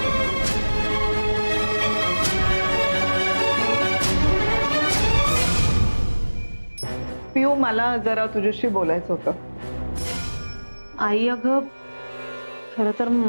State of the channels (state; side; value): inverted; both; correlation -1.00